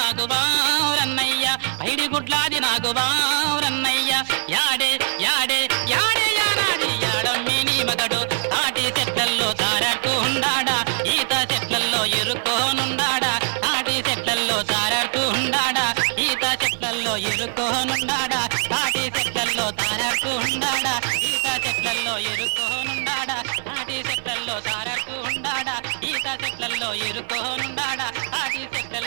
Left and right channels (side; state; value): left; silent; digital silence